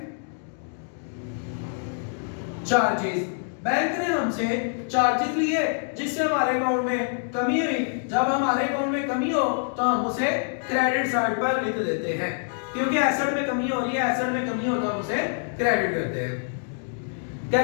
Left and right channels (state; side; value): silent; right; digital silence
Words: चार्जेस। बैंक ने हमसे चार्जेस लिए जिससे हमारे अकाउंट में कमी हुई। जब हमारे अकाउंट में कमी हो तो हम उसे क्रेडिट साइड पर लिख देते हैं, क्योंकि एसेट में कमी हो रही है, एसेट में कमी हो तो हम उसे क्रेडिट करते हैं।